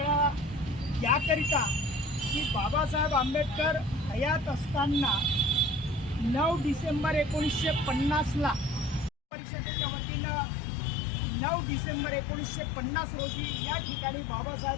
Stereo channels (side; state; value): right; drops out; at 9.1 s